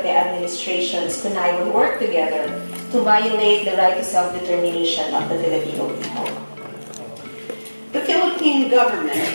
administrations connive and work together to violate the right to self-determination of the Filipino people. The Philippine government,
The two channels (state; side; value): inverted; both; correlation -1.00